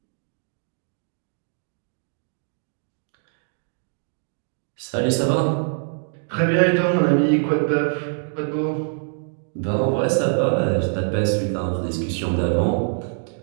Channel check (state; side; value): silent; left; digital silence